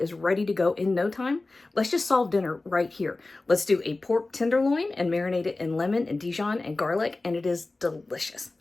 ready to go in no time? Let's just solve dinner right here. Let's do a pork tenderloin and marinate it in lemon and Dijon and garlic, and it is delicious.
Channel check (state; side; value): quieter; right; 3.2 dB